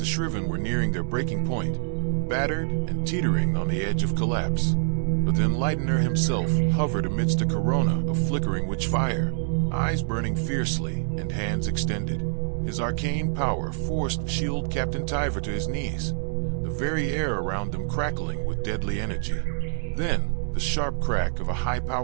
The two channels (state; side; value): silent; left; digital silence